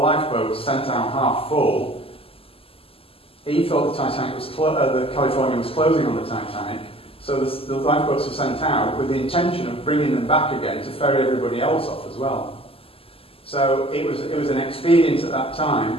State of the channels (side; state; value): right; late; 0.27 ms